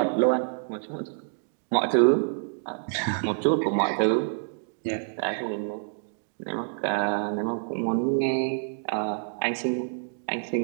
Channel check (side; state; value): left; silent; digital silence